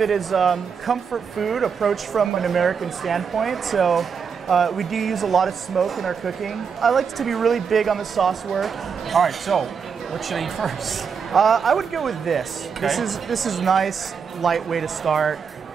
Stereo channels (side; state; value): left; quieter; 6.3 dB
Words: as comfort food approached from an American standpoint. So we do use a lot of smoke in our cooking. I like to be really big on the sauce work. All right, so what should I eat first? I would go with this. Okay. This is nice, light way to start,